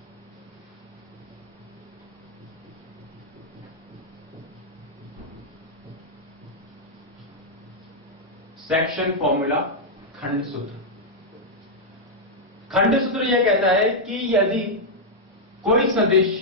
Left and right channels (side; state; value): both; normal; correlation -0.04